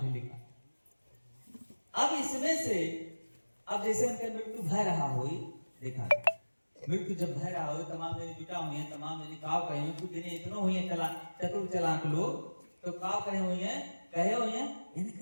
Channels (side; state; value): both; inverted; correlation -1.00